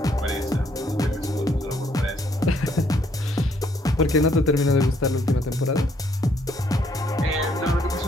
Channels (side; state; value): both; normal; correlation 0.68